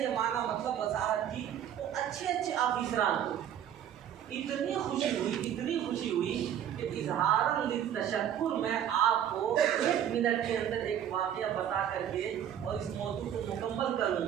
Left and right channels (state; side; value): quieter; left; 9.9 dB